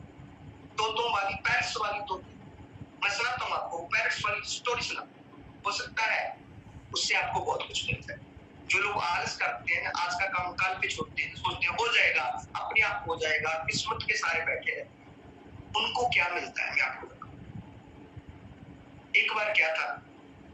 तोतों वाली, पैरट्स वाली तोती। मैं सुनाता हूँ आपको, पैरट्स वाली स्टोरी सुना, हो सकता है उससे आपको बहुत कुछ मिलता है। जो लोग आलस करते हैं, आज का काम कल पे छोड़ते हैं, सोचते हैं हो जाएगा, अपने आप हो जाएगा, किस्मत के सारे बैठे हैं, उनको क्या मिलता है मैं आपको बताऊं। एक बार क्या था,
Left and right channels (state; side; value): identical; both; correlation 1.00